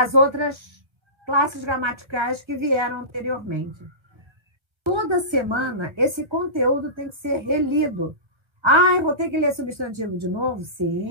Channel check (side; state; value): left; late; 1.4 ms